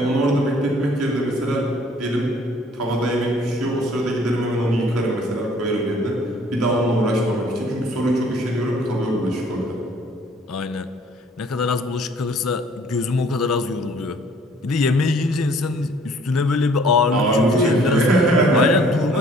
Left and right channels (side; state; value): both; normal; correlation 0.57